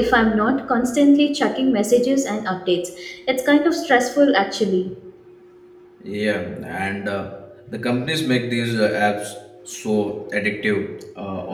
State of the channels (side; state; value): both; identical; correlation 1.00